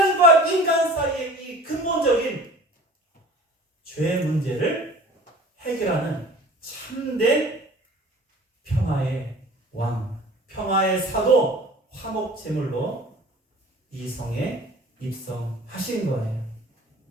인간 사이의 이 근본적인 죄의 문제를 해결하는 참된 평화의 왕, 평화의 사도, 화목제물로 이 성에 입성하신 거예요.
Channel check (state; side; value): normal; both; correlation 0.44